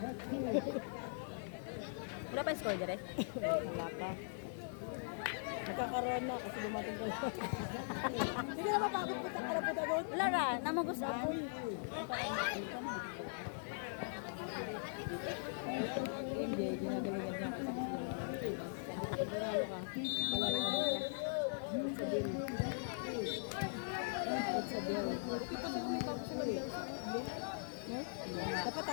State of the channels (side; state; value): right; silent; 51 dB below the other